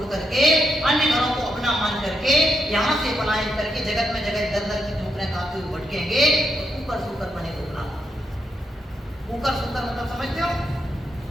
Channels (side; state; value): both; normal; correlation 0.82